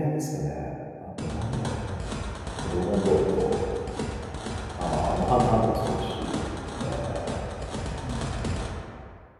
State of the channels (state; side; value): identical; both; correlation 1.00